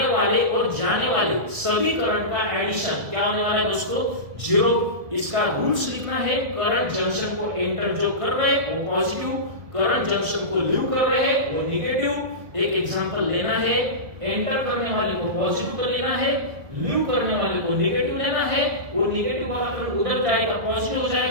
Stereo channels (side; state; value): left; late; 1.7 ms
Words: वाले और जाने वाले सभी करंट का एडिशन क्या होने वाला है दोस्तों? 0। इसका रूल्स लिखना है, करंट जंक्शन को एंटर जो कर रहे हैं वो पॉजिटिव, करंट जंक्शन को लीव कर रहे हैं वो नेगेटिव। एक एग्जांपल लेना है, एंटर करने वाले को पॉजिटिव कर लेना है, लीव करने वाले को नेगेटिव लेना है, वो नेगेटिव वाला करंट उधर जाएगा पॉजिटिव हो